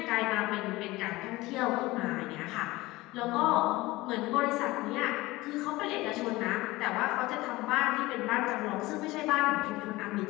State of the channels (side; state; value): right; quieter; 19.8 dB